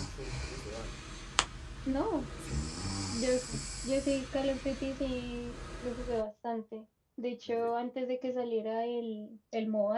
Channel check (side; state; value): both; identical; correlation 1.00